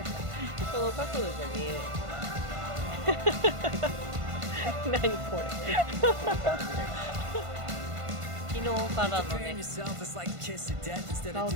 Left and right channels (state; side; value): late; left; 1.5 ms